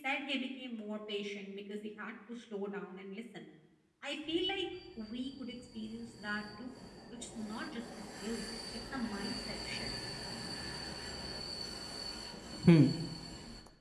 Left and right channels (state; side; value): identical; both; correlation 1.00